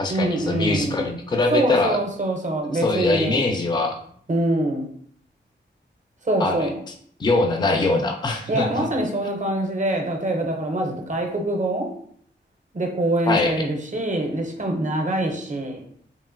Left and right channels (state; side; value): normal; both; correlation 0.55